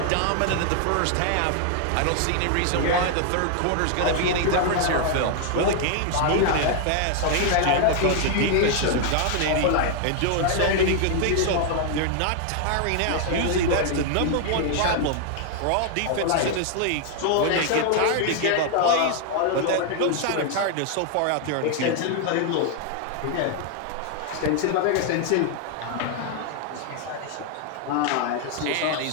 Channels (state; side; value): different; both; correlation 0.00